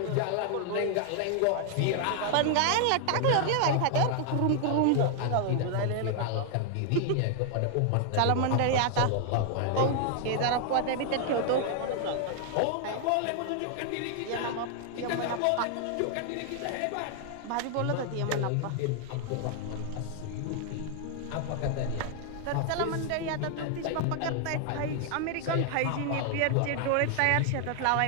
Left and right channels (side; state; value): both; different; correlation 0.00